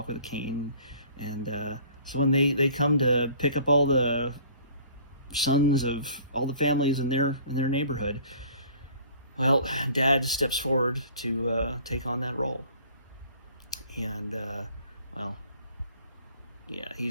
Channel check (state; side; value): inverted; both; correlation -0.51